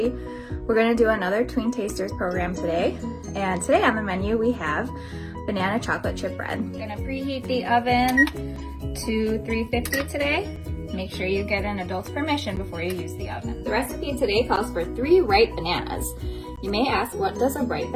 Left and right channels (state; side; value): identical; both; correlation 1.00